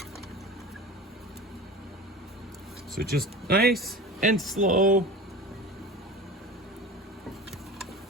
So just nice and slow.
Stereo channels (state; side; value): normal; both; correlation 0.34